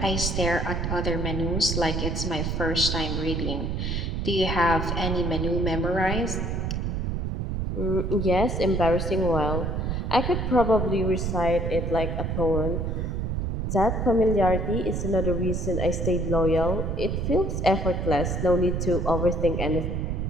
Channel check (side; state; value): right; noise; rumble, 1 dB below the sound